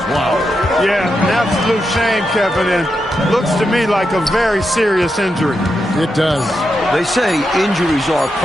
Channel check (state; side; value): normal; both; correlation 0.85